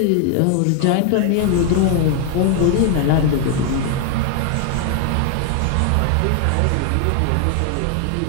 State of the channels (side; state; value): both; different; correlation 0.00